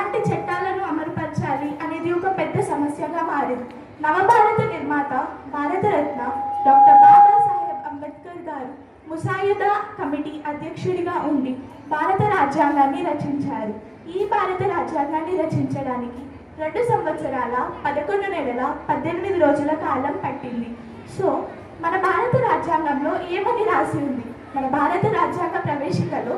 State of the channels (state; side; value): identical; both; correlation 1.00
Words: చట్టాలను అమలుపరచాలి అనేది ఒక పెద్ద సమస్యగా మారింది. నవభారత నిర్మాత భారతరత్న డాక్టర్ బాబాసాహెబ్ అంబేద్కర్ గారు ముసాయిదా కమిటీ అధ్యక్షుడిగా ఉండి భారత రాజ్యాంగాన్ని రచించారు. ఈ భారత రాజ్యాంగాన్ని రచించడానికి 2 సంవత్సరాల 11 నెలల 18 రోజుల కాలం పట్టింది. సో మన భారత రాజ్యాంగంలో ఏమని రాసి ఉంది? మన భారత రాజ్యాంగ ప్రవేశికలో